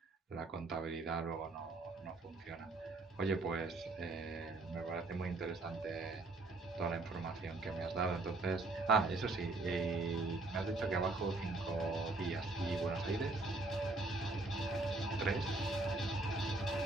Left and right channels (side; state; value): left; quieter; 3.2 dB